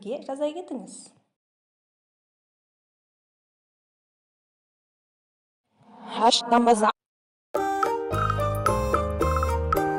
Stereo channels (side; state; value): both; identical; correlation 1.00